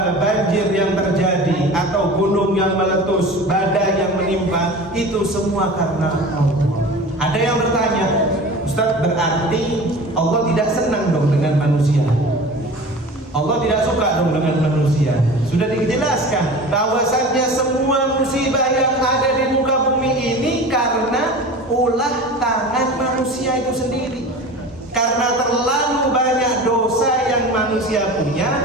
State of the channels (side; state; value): both; normal; correlation 0.36